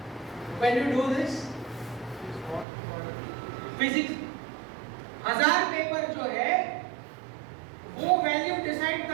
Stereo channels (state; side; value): drops out; left; at 2.7 s